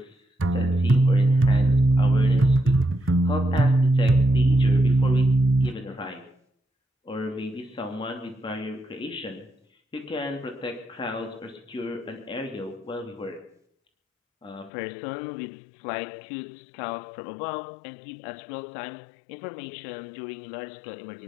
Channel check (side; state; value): right; drops out; at 14.7 s